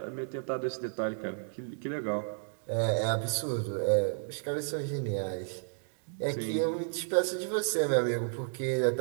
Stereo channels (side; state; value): left; silent; digital silence